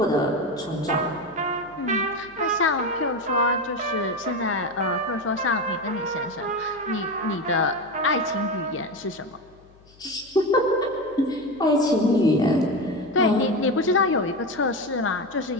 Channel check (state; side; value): noise; left; hum, 27 dB below the sound